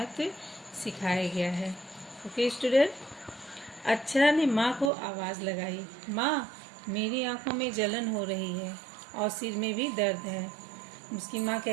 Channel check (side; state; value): left; drops out; at 4.9 s